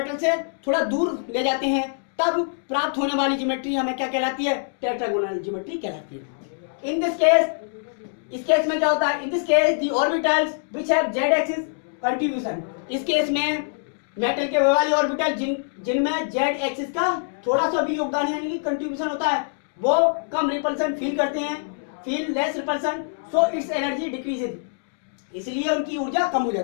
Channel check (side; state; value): right; silent; digital silence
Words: से थोड़ा दूर ले जाते हैं, तब प्राप्त होने वाली ज्योमेट्री हमें क्या कहलाती है, टेट्रागोनल ज्योमेट्री कहलाती है। इन दिस केस, इस केस में क्या होता है, in this case the orbitals which have Z axis contribution, इस केस में मेटल के वाले ऑर्बिटल जिनमें जेड एक्सिस का थोड़ा सा भी योगदान यानी कि कंट्रीब्यूशन होता है, वो कम रिपल्सन फील करते हैं, feel less repulsion, so it's energy decreases, इसलिए उनकी ऊर्जा कम हो